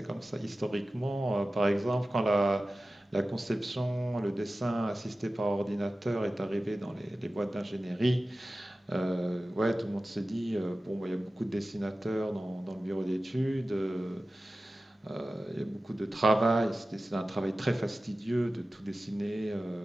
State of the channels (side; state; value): both; normal; correlation 0.95